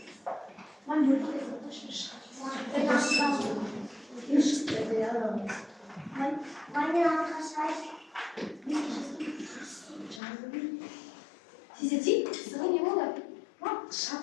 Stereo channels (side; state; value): right; drops out; at 10.2 s